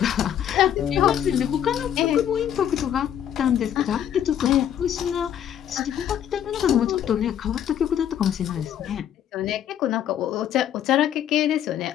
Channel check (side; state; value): right; quieter; 10.0 dB